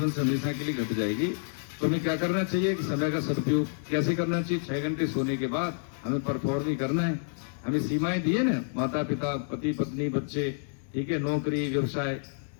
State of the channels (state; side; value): silent; right; 59 dB below the other